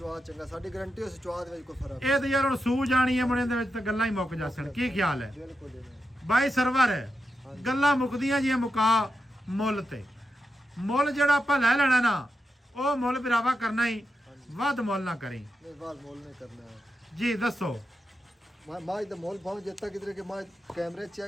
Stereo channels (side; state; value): both; normal; correlation 0.88